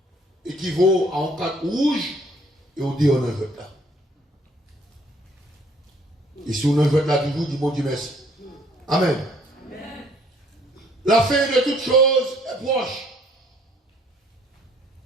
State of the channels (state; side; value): normal; both; correlation 0.61